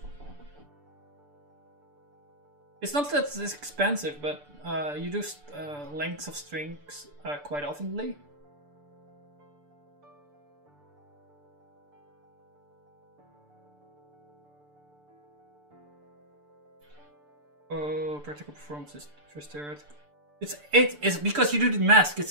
It's not that it's expensive, but you do lengths of strings quite oftenly. Oh, practical performance is first theoretical. It's 8. It's because you do the mask.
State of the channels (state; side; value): late; left; 6.8 ms